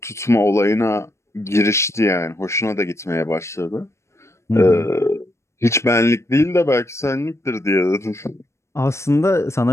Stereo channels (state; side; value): late; right; 0.13 ms